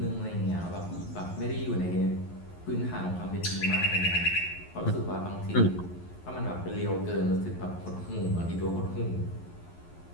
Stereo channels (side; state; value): right; late; 11 ms